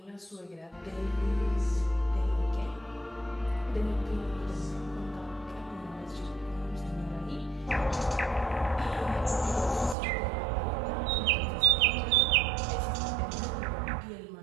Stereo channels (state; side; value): drops out; left; at 10.0 s